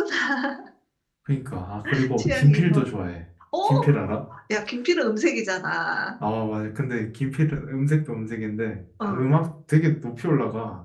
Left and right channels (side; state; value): both; identical; correlation 1.00